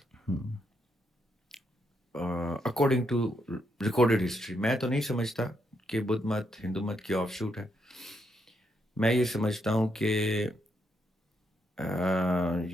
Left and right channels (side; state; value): both; normal; correlation 0.78